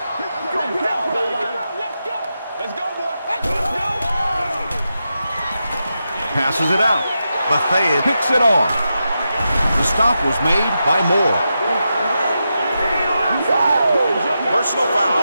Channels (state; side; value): inverted; both; correlation -0.88